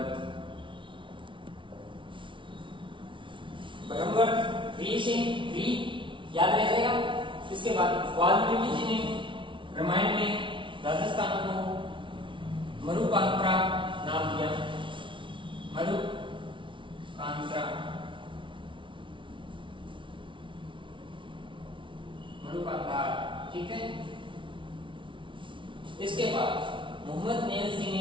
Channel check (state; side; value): late; left; 0.24 ms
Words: री याद रह जाएगा। इसके बाद वाल्मीकि जी ने रामायण में राजस्थान को मरुकांत्रा नाम दिया। मरुकांत्रा, ठीक है। इसके बाद मोहम्मद नैन्सी ने